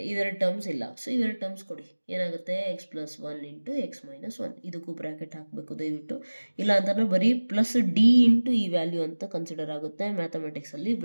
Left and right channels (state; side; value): inverted; both; correlation -1.00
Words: ಇವೆರಡು ಟರ್ಮ್ಸ್ ಇಲ್ಲ. ಸೊ ಇವೆರಡು ಟರ್ಮ್ಸ್ ಕೊಡಿ, ಏನಾಗುತ್ತೆ X plus 1 into X minus 1. ಇದಕ್ಕೂ ಬ್ರ್ಯಾಕೆಟ್ ಹಾಕಬೇಕು ದಯವಿಟ್ಟು, ಇಲ್ಲ ಅಂತಂದರೆ ಬರೀ ಪ್ಲಸ್ ಡಿ ಇಂಟು ಈ ವ್ಯಾಲ್ಯೂ ಅಂತ ಕನ್ಸಿಡರ್ ಆಗುತ್ತೆ. ಮ್ಯಾಥಮೆಟಿಕ್ಸಲ್ಲಿ